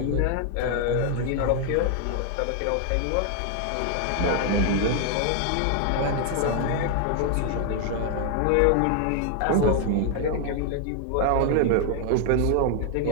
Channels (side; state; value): both; different; correlation 0.00